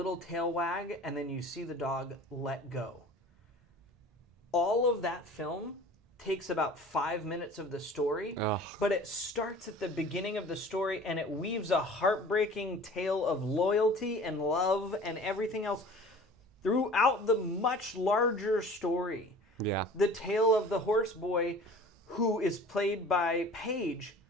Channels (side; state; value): both; normal; correlation 0.44